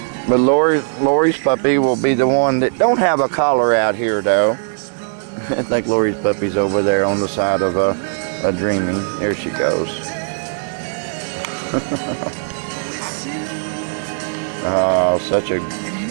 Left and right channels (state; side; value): silent; left; digital silence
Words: But Lori's puppy will be the one that don't have a collar out here though. I think Lori's puppy's over there on the side of a Dreamy. There she goes. Oh, such a